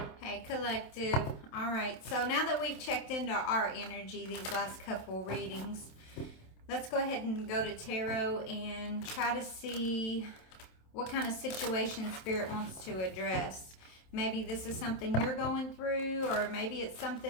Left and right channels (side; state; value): right; late; 27 ms